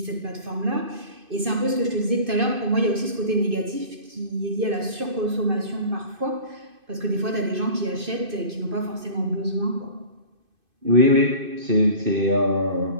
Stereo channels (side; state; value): left; late; 2.5 ms